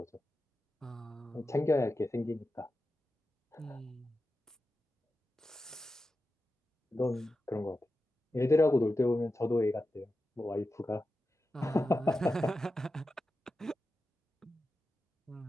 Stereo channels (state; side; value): normal; both; correlation 0.91